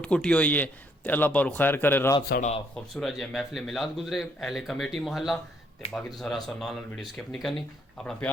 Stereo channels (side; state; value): both; normal; correlation 0.69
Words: کٹی ہوئی ہے تے اللہ پر خیر کرے رات ساڑا خوبصورت جی محفل میلاد گزرے اہل کمیٹی محلہ تے باقی تو سارا سو نال ویڈیو سکپ نہیں کرنی اپنا